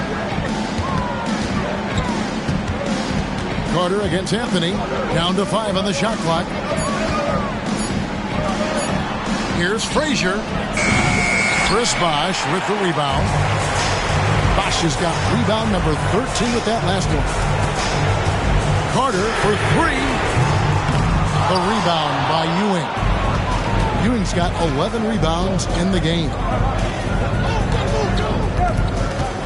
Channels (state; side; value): identical; both; correlation 1.00